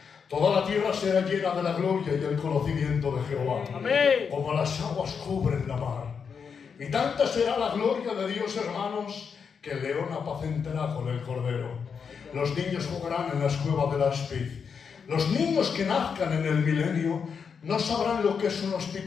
toda la tierra será llena de la gloria y el conocimiento de Jehová. Amén. Como las aguas cubren la mar. Y tanta será la gloria de Dios, hermanos, que el león apacentará con el cordero. Los niños jugarán en las cuevas del áspid. Los niños que nazcan en el milenio no sabrán lo que es un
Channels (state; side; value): quieter; right; 6.3 dB